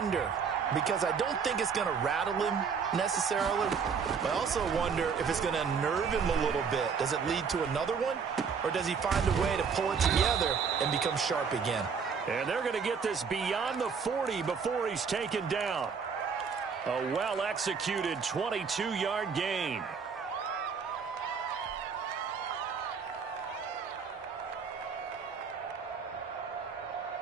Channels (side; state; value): left; quieter; 6.0 dB